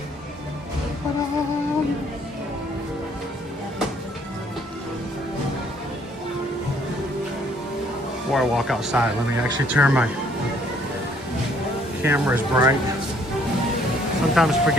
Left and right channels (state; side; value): normal; both; correlation 0.63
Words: Before I walk outside, let me actually turn my camera's bright. Sometimes